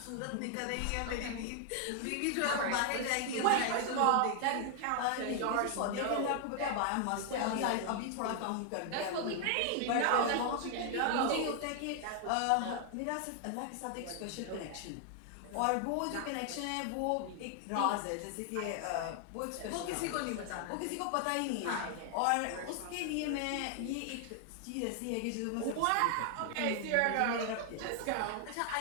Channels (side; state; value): both; different; correlation 0.00